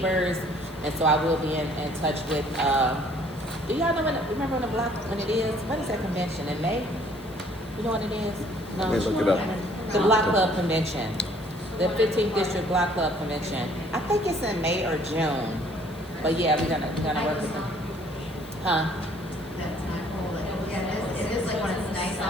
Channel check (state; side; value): noise; left; hiss, 24 dB below the sound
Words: And so I will be in touch with, do y'all know remember when it is? When is that convention, in May? You know when it is? No. Let me look it up. The Block Club Convention, the 15th District Block Club Convention. I think it's in May or June. But yeah, we're gonna work with them. Huh? That's not cool. Yeah, it is like when it's nice